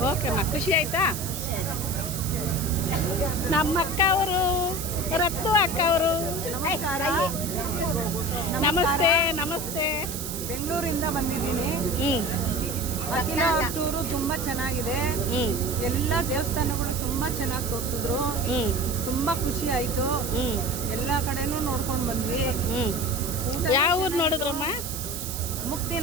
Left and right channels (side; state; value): right; noise; hiss, 7 dB below the sound